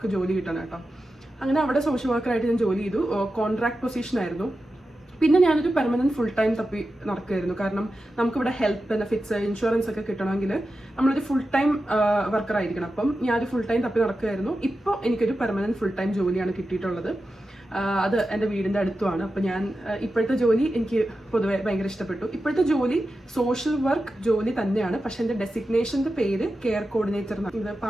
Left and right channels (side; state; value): both; normal; correlation 0.91